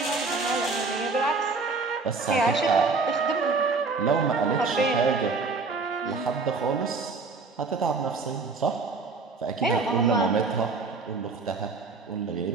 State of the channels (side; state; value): left; quieter; 4.2 dB